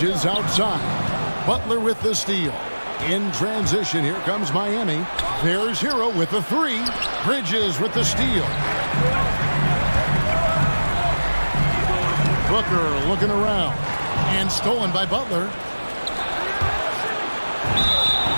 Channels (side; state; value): both; inverted; correlation -1.00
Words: outside. Butler with the steal. In transition, here comes Miami. There's Hero with the 3. Bridges with the steal. Booker looking around. And stolen by Butler.